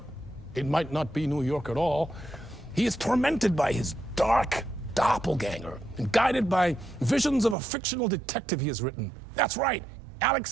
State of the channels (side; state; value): left; drops out; at 7.6 s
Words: it might not be New York at all. He is tormented by his dark doppelganger and guided by visions of a fictional detective he has written. That's right,